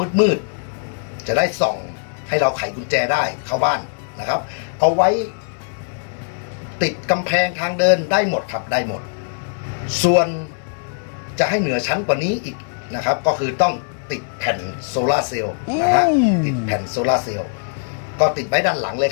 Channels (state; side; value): silent; right; 65 dB below the other